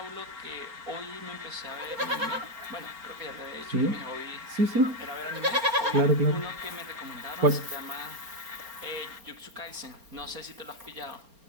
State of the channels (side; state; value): left; late; 4.3 ms